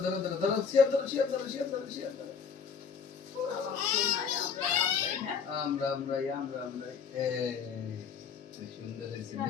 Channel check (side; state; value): right; quieter; 6.3 dB